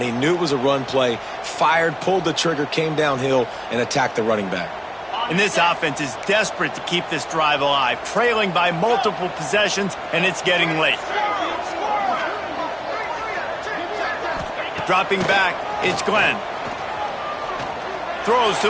He knew it was a run play, fired, pulled the trigger, came downhill, and attacked the running back. And this offense is desperate to keep this drive alive, trailing by multiple possessions, and it's getting late. Dropping back, it's Glenn. Throws to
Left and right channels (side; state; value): both; identical; correlation 1.00